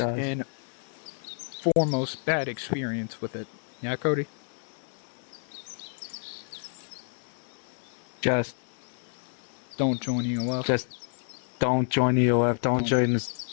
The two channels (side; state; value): right; silent; 58 dB below the other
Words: and foremost bad experience with it. Yeah, Cody? Just don't join EOF. Just don't join EOF. Don't join